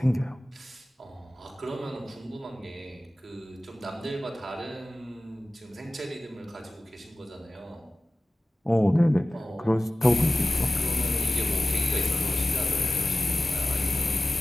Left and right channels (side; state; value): both; normal; correlation 0.96